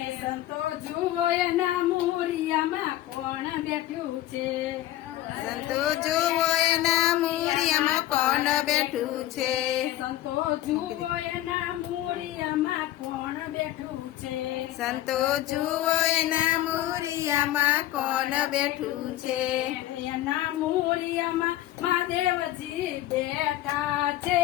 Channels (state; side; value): quieter; right; 14.4 dB